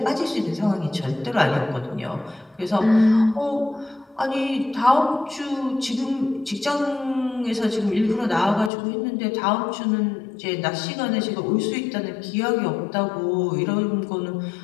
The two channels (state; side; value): drops out; right; at 8.7 s